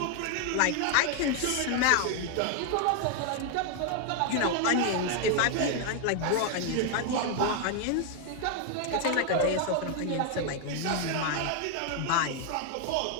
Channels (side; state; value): both; different; correlation 0.00